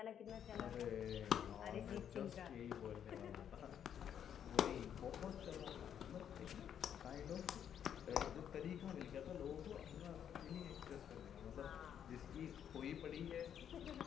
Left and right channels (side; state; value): right; quieter; 9.0 dB